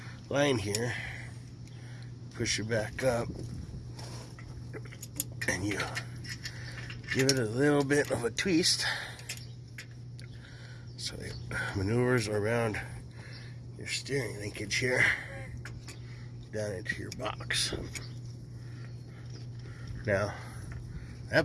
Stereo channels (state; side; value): identical; both; correlation 1.00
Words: line here, push it back up, and you give it a little bit of a twist so it maneuvers around your steering linkage here down into your box. Now